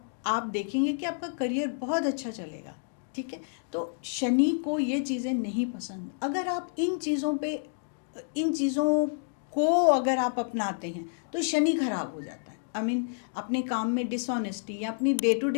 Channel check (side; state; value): right; silent; digital silence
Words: देखेंगे कि आपका करियर बहुत अच्छा चलेगा, ठीक है। तो शनि को ये चीज़ें नहीं पसंद। अगर आप इन चीज़ों को अगर आप अपनाते हैं तो शनि खराब हो जाता है। अपने काम में डिसऑनेस्टी, या अपनी डे टू